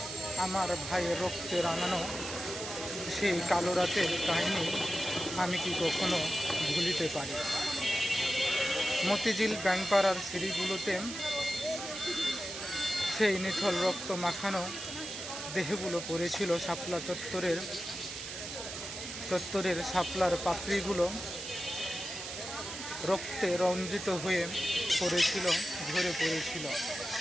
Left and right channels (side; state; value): right; noise; hiss, 8 dB below the sound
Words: আমার ভাইয়ের রক্তে রাঙানো সেই কালো রাতের কাহিনী আমি কি কখনো ভুলিতে পারি? মতিঝিল ব্যাংকপাড়ার সিঁড়িগুলোতে সেই নিথল রক্ত মাখানো দেহগুলো পড়েছিল। শাপলা চত্বরের শাপলার পাপড়িগুলো রক্তে রঞ্জিত হয়ে পড়েছিল, ঝরে পড়েছিল।